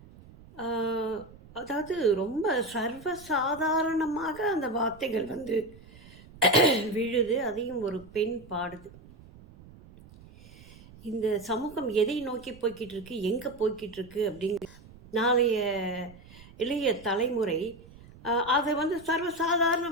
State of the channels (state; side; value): noise; right; rumble, 21 dB below the sound